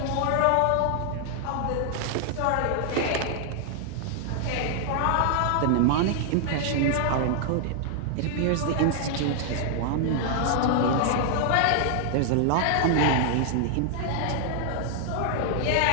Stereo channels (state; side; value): different; both; correlation 0.00